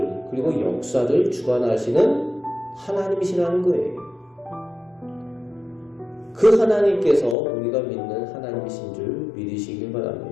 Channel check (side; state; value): right; drops out; at 7.4 s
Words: 그리고 역사를 주관하시는 하나님이시라는 거예요. 그 하나님께서 우리가 믿는 하나님이신 줄 믿으시길